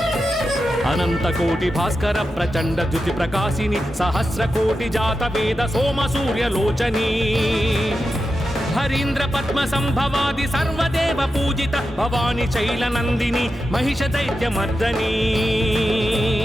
అనంత కోటి భాస్కర ప్రచండ ద్యుతి ప్రకాశిని సహస్ర కోటి జాత వేద సోమ సూర్యలోచని హరీంద్ర పద్మ సంభవాది సర్వదేవ పూజిత భవాని శైలనందిని మహిష దైత్యమర్దని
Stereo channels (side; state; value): both; normal; correlation 0.90